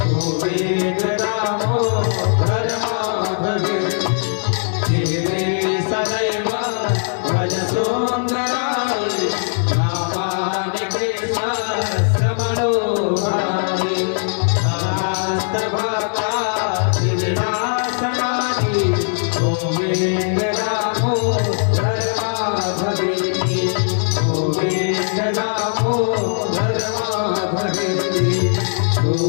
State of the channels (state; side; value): silent; right; digital silence